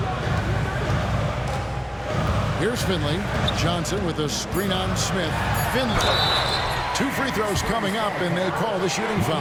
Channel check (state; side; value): identical; both; correlation 1.00